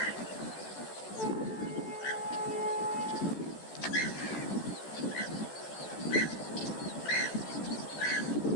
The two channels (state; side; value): late; right; 14 ms